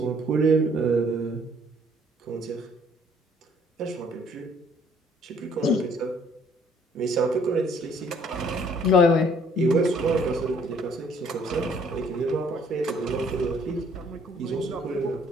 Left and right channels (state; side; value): normal; both; correlation 0.61